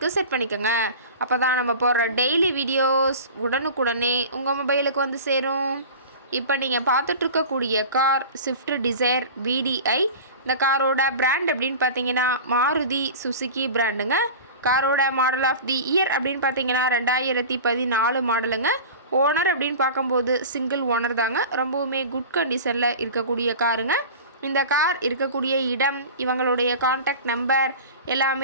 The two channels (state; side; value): inverted; both; correlation -0.35